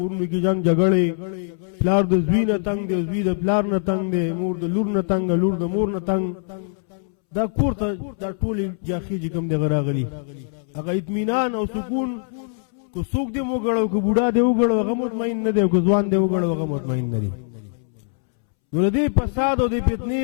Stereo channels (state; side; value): silent; right; 64 dB below the other